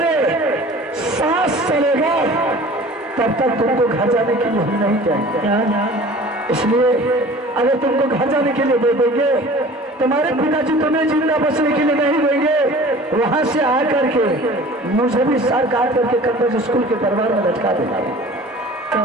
सांस चलेगा तब तक तुमको घर जाने के लिए हम नहीं जाएंगे। इसलिए अगर तुमको घर जाने के लिए दे देंगे, तुम्हारे पिताजी तुम्हें जिंदा बचने के लिए नहीं देंगे, वहां से आकर के मुझे भी सर काट करके कन्वेंट स्कूल के दरबार में लटका देना। तो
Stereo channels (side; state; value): both; normal; correlation 0.44